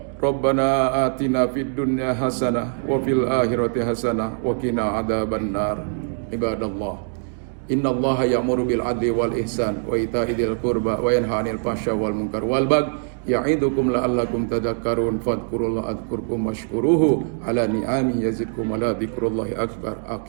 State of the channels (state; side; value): silent; left; digital silence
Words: Rabbana atina fid dunya hasanah wa fil akhirati hasanah wa qina adzabannar. Ibadallah, innallaha ya'muru bil adli wal ihsan wa ita'i dzil qurba wa yanha 'anil fahsya wal munkar wal baghi ya'idukum la'allakum tadhakkarun fadhkurullaha adhkurkum washkuruhu ala ni'ami yazidkum wa la dzikrullahi akbar.